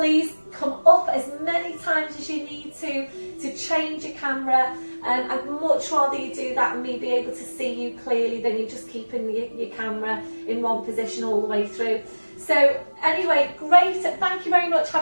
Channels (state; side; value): inverted; both; correlation -1.00